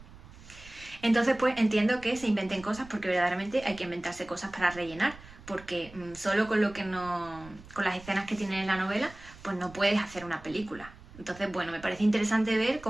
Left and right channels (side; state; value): right; noise; rumble, 19 dB below the sound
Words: Entonces pues entiendo que se inventen cosas porque verdaderamente hay que inventarse cosas para rellenar, porque solo con con las escenas que tienen en la novela pues no puedes hacer una película. Entonces bueno, me parece interesante ver